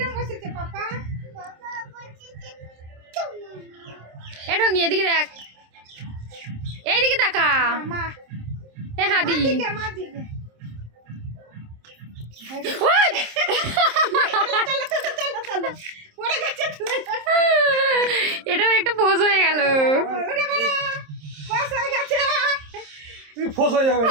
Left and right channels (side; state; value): left; late; 27 ms